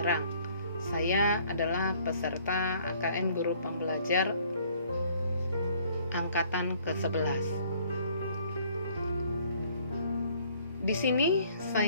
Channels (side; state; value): both; inverted; correlation -0.60